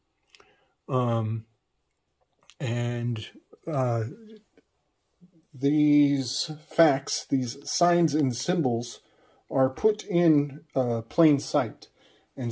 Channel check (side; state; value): both; identical; correlation 1.00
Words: These facts, these signs and symbols are put in plain sight. And